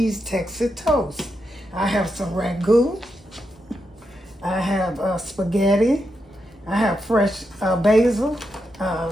Texas toast. I have some ragu. I have spaghetti. I have fresh basil,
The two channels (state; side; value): normal; both; correlation 0.85